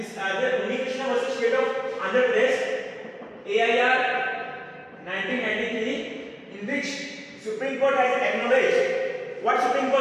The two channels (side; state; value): both; identical; correlation 1.00